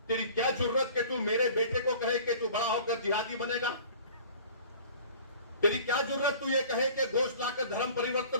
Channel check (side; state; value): both; inverted; correlation -0.46